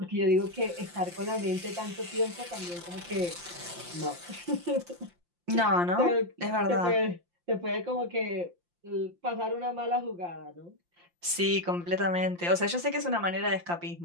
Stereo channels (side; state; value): left; late; 5.7 ms